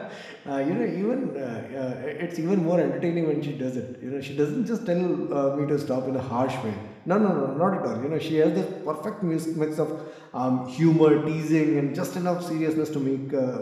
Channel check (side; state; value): both; identical; correlation 1.00